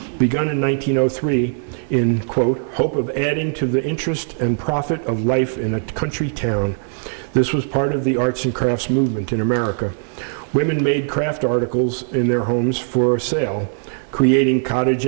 begun in 1903 in, quote, hope of adding to the interest and profit of life in a country town. This was part of the arts and crafts movement in America. Women made craft articles in their homes for sale, creating cottage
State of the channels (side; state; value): left; silent; 61 dB below the other